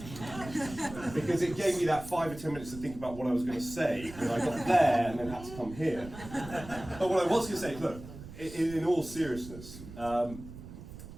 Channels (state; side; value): noise; right; rumble, 14 dB below the sound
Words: Because it gave me that 5 or 10 minutes to think about what I was going to say when I got there and then had to come here. But what I was going to say, look, in all seriousness,